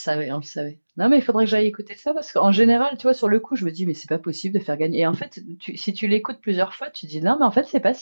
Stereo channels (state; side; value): inverted; both; correlation -1.00